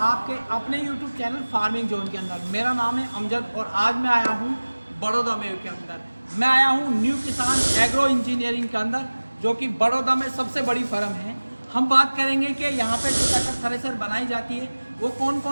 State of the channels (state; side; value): inverted; both; correlation -1.00